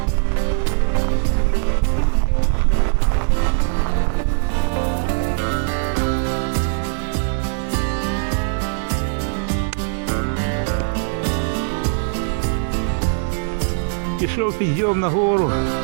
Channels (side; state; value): left; silent; digital silence